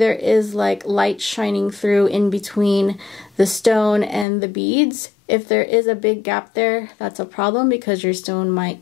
is like light shining through in between the stone and the beads. If there is a big gap there, that's a problem because your stone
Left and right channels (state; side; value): drops out; right; at 4.2 s